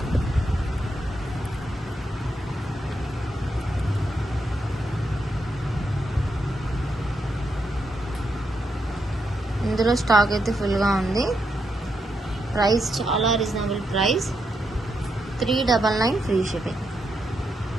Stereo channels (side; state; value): both; normal; correlation 0.82